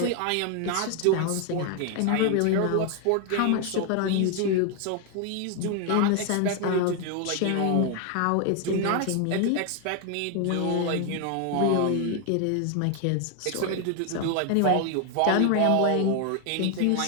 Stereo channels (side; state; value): both; different; correlation 0.01